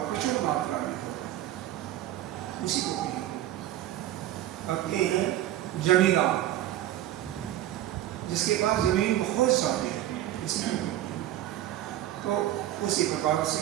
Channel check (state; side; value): quieter; left; 13.3 dB